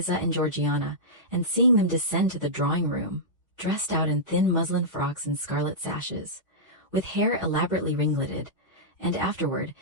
and Georgiana, and seeing them descend to the drawing-room, dressed out in thin muslin frocks and scarlet sashes, with hair elaborately ringleted, and afterward,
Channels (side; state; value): both; normal; correlation -0.13